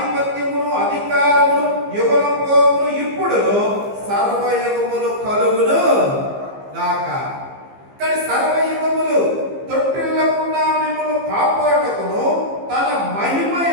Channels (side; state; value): left; late; 15 ms